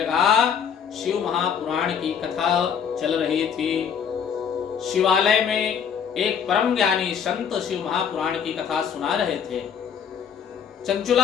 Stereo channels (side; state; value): right; quieter; 7.5 dB